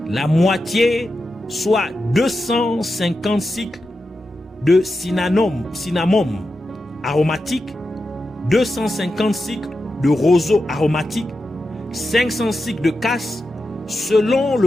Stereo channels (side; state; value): both; normal; correlation 0.90